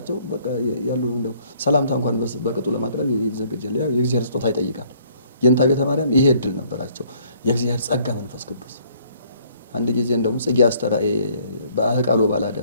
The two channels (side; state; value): both; inverted; correlation -0.62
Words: በቃ ያሉ እንደው ሰላምታ እንኳን በቅጡ ለማቅረብ ይዘገጃል። ያው የእግዚአብሔር ስጦታ ይጠይቃል። የእንታ ቤተ ማርያም ይሄ እድል ነበራቸው። የእግዚአብሔር ጸጋ መንፈስ ቅዱስ አንድ ጊዜ እንደውም ጽጌ አስተራኤ በአህቃሎ